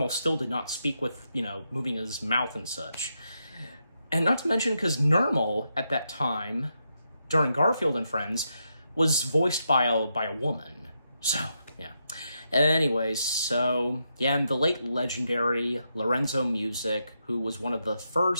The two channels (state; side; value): inverted; both; correlation -0.83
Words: still did not speak with, you know, moving his mouth and such. And not to mention, because Normal, at that time, during Garfield and Friends, was voiced by a woman. So, yeah. Anyways, so, yeah, and the late legendary Lorenzo Music, who was one of the